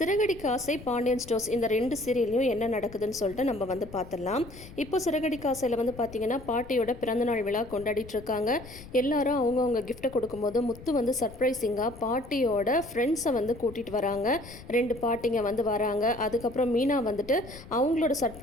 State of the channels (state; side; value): noise; left; rumble, 17 dB below the sound